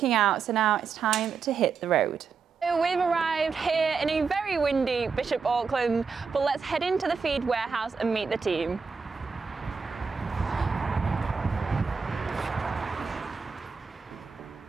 out, so now it's time to hit the road. So we've arrived here in a very windy Bishop Auckland, but let's head into the feed warehouse and meet the team.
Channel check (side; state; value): left; quieter; 5.4 dB